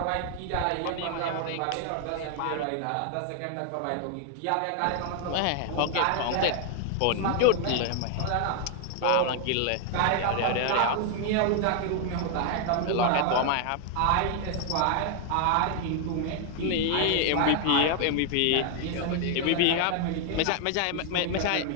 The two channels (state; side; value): different; both; correlation 0.00